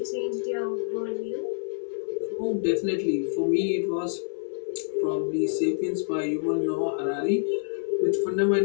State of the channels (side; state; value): right; silent; 60 dB below the other